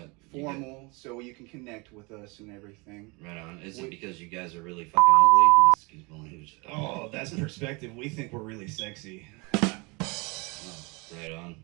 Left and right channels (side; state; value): left; quieter; 28.0 dB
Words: formal, so you can connect with us and everything. Right on. Is it because you guys are really fucking ugly? Excuse my language. Oh, that's perspective. We think we're really sexy. Oh, right on.